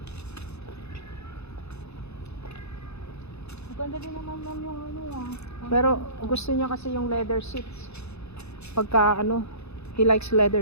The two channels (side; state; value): right; late; 0.80 ms